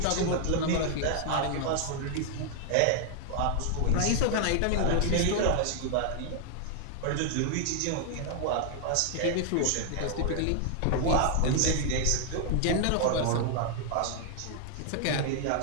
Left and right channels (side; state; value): both; different; correlation 0.00